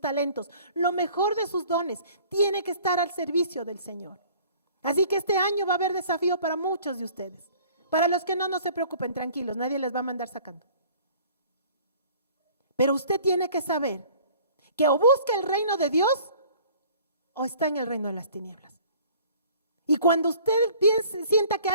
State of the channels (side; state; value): both; inverted; correlation -0.51